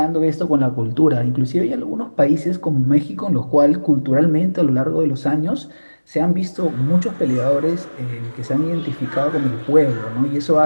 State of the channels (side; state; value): both; inverted; correlation -1.00